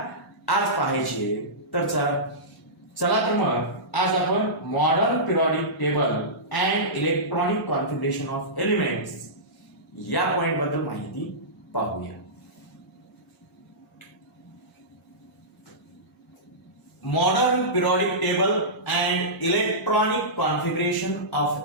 आज पाहायची आहे. तर चला तर मग आज आपण modern periodic table and electronic configuration of elements या पॉइंट बद्दल माहिती पाहूया. Modern periodic table and electronic configuration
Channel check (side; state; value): both; normal; correlation -0.17